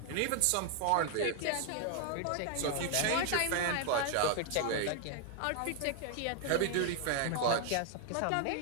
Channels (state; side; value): different; both; correlation 0.00